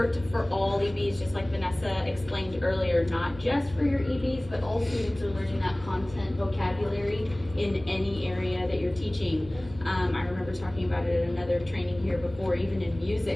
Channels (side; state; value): right; noise; hum, 17 dB below the sound